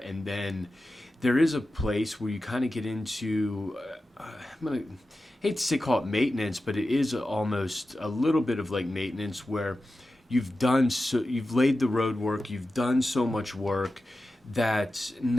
then there is a place where you kind of get into, hate to say call it maintenance, but it is almost a little bit of like maintenance, where you've laid the road work, you've done so much work that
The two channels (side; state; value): both; normal; correlation 0.93